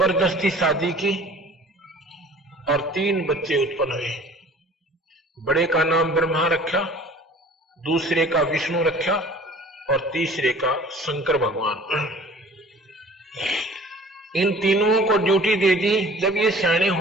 शादी की और 3 बच्चे उत्पन्न हुए। बड़े का नाम ब्रह्मा रखा, दूसरे का विष्णु रखा और तीसरे का शंकर भगवान। इन तीनों को ड्यूटी दे दी। जब ये सियाने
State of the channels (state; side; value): normal; both; correlation 0.48